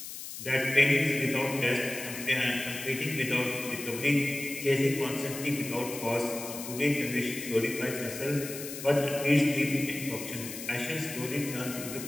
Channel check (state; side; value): noise; left; hiss, 9 dB below the sound